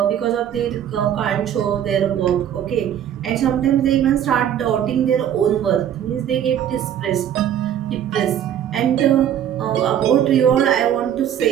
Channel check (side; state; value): left; quieter; 10.0 dB